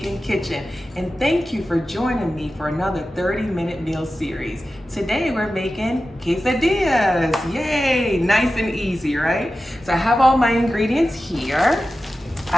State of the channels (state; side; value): normal; both; correlation 0.94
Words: Kitchen. And thank you for joining me for another 30-minute meal series. Today we're making quesadillas. Yay! Nice and easy, right? So I have all my ingredients here.